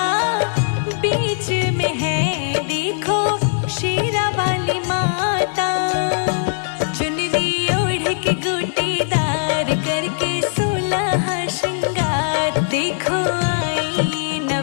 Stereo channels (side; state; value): right; silent; digital silence